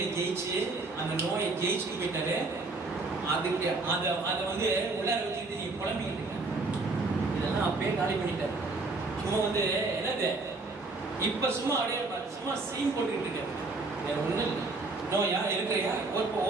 ஜெயிச்சு அந்த நோயை ஜெயிச்சுட்டு போயிட்டாரு. அதுக்கு அதை வந்து உள்ளார வச்சுக்கிட்டு நீ குழம்பிக்கிட்டு இருக்க, இதெல்லாம் அப்பயே காலி பண்ணிட்டாரு. சும்மா வந்து என்னது இப்ப சும்மா அப்படியே சும்மா சீன் போட்டுக்கிட்டு இருக்காரு, வேற ஒண்ணும் இல்லை. நோயா இருக்கிறையா இப்போ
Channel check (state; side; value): quieter; left; 3.5 dB